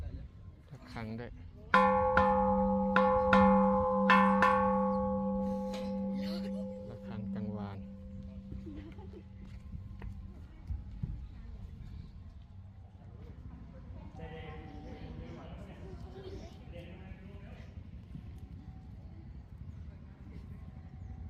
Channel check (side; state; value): both; identical; correlation 1.00